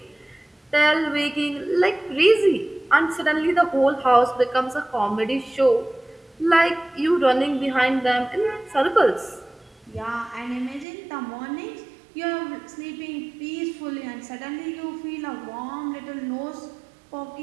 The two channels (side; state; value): left; drops out; at 10.9 s